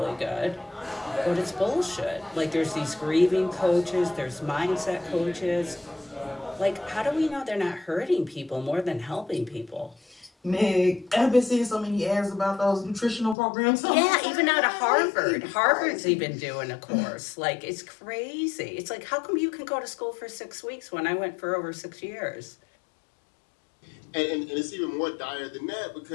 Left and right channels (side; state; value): right; drops out; at 13.4 s